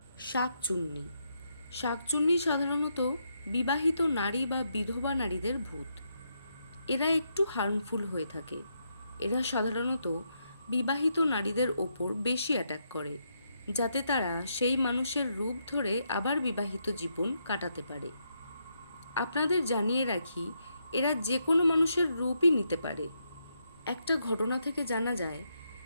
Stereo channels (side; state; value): both; inverted; correlation -0.79